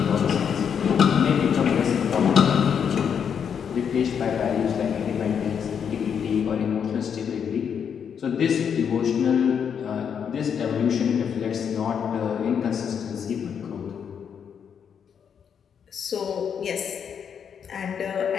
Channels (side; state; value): right; quieter; 7.5 dB